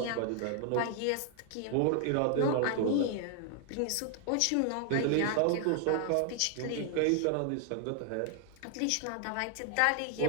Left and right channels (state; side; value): different; both; correlation 0.00